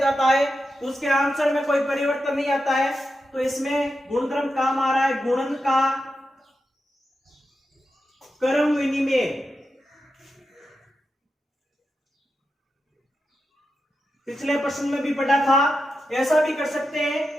है तो उसके आंसर में कोई परिवर्तन नहीं आता है। तो इसमें गुणधर्म काम आ रहा है, गुणन का क्रम विनिमय। पिछले प्रश्न में भी पढ़ा था। ऐसा भी कर सकते हैं,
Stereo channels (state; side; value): normal; both; correlation 0.89